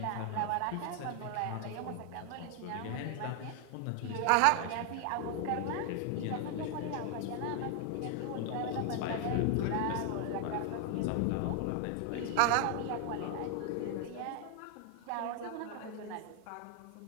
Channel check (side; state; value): both; different; correlation 0.00